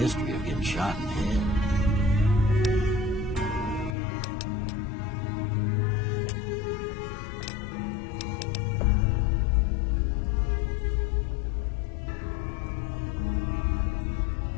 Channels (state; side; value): drops out; right; at 4.0 s